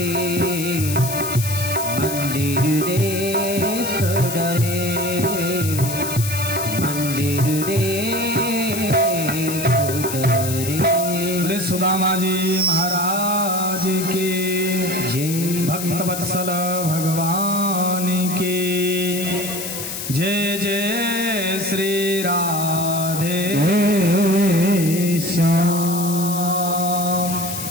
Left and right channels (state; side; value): noise; left; hiss, 6 dB below the sound